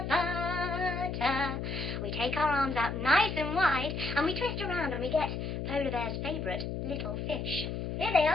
butter. We take our arms out nice and wide and we twist around and we get Polar Bear's favourite little fish. Here they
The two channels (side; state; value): left; noise; hum, 4 dB below the sound